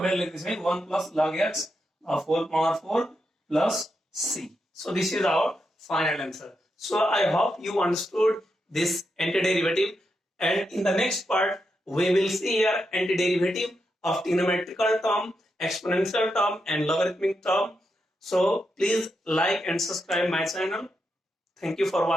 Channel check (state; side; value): normal; both; correlation 0.85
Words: लेख्दैछौँ है, 1 plus log x of whole power 4 plus c. So this is our final answer. So I hope you understood this antiderivative, and in the next part we will see here antiderivative of trigonometrical term, exponential term and logarithmic term. So please like and subscribe my channel. Thank you for